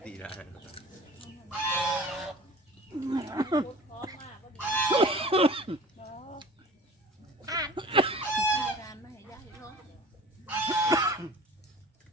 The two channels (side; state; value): both; normal; correlation 0.42